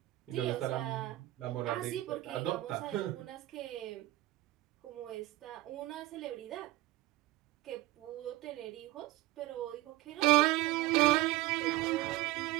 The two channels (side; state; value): left; quieter; 17.4 dB